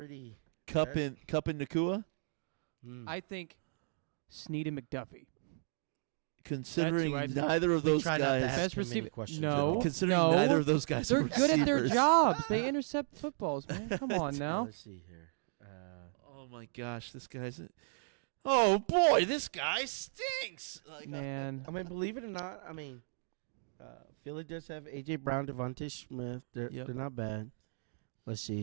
Cup and Nakua. I think Snead and McDuffie. Considering neither of those guys, best receiver. No, considering neither of those guys, they're are good at their receivers. jobs. They intercept footballs, man. Come on now. Let's see here. Oh my gosh, this guy's. Oh boy, this guy stinks. Man, I mean, believe it or not, Philly does have A.J. Brown, Devontae Smith. They're not bad. Let's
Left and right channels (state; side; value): silent; left; digital silence